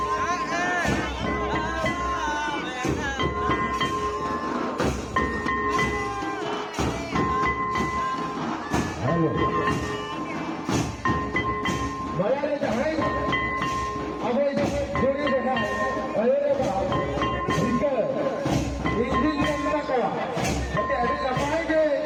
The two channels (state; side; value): identical; both; correlation 1.00